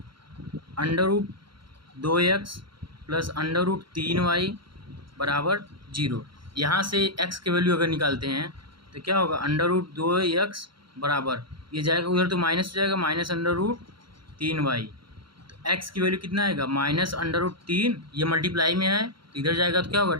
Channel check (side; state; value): left; late; 0.73 ms